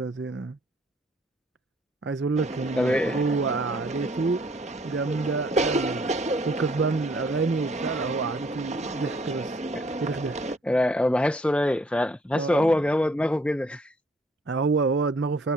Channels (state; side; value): normal; both; correlation 0.62